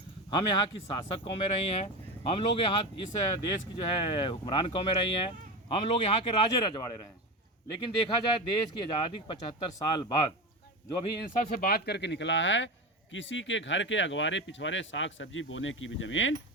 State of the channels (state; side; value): normal; both; correlation 0.22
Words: हम यहाँ की शासक कौमें रही हैं, हम लोग यहाँ इस देश की जो है हुक्मरान कौमें रही हैं, हम लोग यहाँ के राजे रजवाड़े रहे हैं। लेकिन देखा जाए देश की आज़ादी के 75 साल बाद जो अभी इन सब से बात करके निकला है, किसी के घर के अगवारे पिछवाड़े साग सब्जी बोने की भी ज़मीन